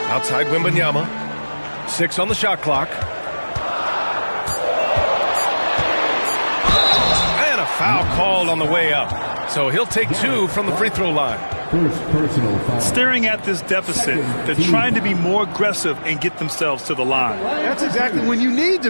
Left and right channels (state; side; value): inverted; both; correlation -1.00